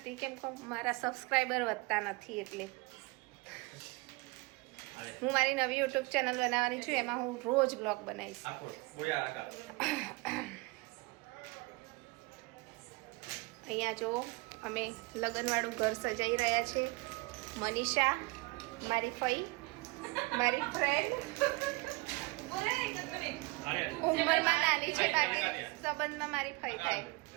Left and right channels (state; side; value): quieter; left; 25.4 dB